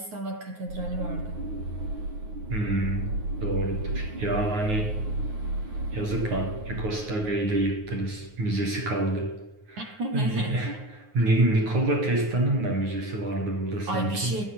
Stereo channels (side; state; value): left; late; 9.5 ms